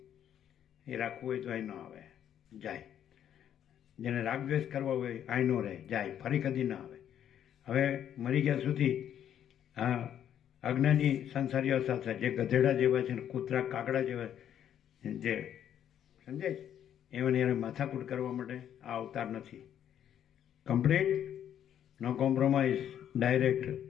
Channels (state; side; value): quieter; right; 9.9 dB